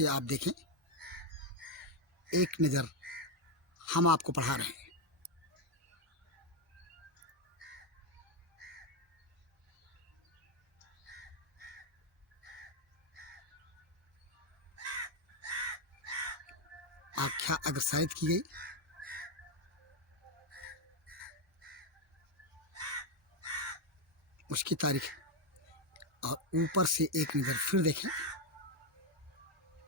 आप देखें। एक नज़र हम आपको पढ़ा रहे हैं। आख्या अग्रसारित की गई। उसकी तारीख और ऊपर से एक नज़र फिर देखें।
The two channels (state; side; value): normal; both; correlation 0.05